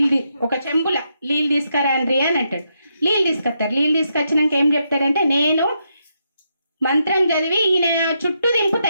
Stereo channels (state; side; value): inverted; both; correlation -0.81